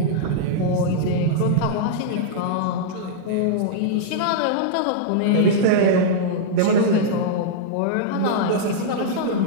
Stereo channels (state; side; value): different; both; correlation -0.02